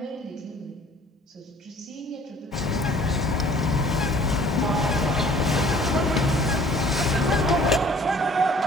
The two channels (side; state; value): both; normal; correlation 0.53